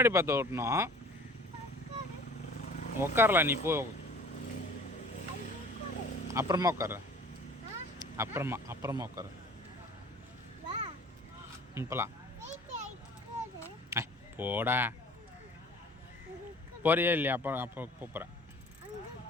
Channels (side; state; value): both; normal; correlation 0.47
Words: பார்த்து ஓட்டணும். உட்காரலாம், நீ போ. அப்புறமா உட்கார. அப்புறமா உட்கார. இப்போலாம் போடா. போறியா இல்லையா? அப்போ போகிறேன்.